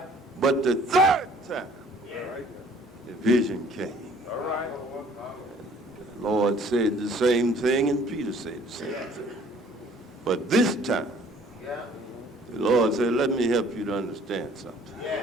But the third time, the vision came. The Lord said the same thing, and Peter said the same thing. But this time, the Lord said, let me help you to understand something.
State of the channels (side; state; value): both; normal; correlation 0.55